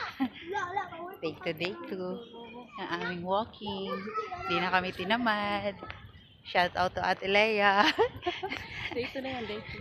Day 2. Ang aming walking. Hindi na kami tinamad. Shout out to Ate Leia. Day 2 na yan, day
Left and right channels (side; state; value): both; identical; correlation 1.00